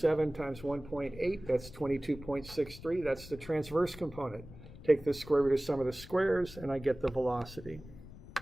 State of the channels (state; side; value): noise; left; rumble, 17 dB below the sound